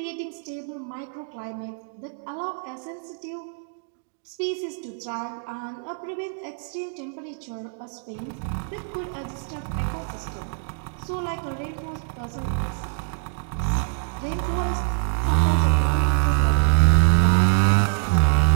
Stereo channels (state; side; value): silent; left; 62 dB below the other